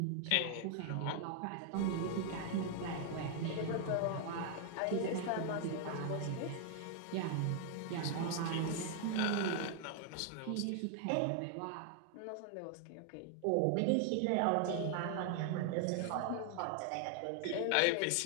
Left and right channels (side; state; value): both; different; correlation 0.00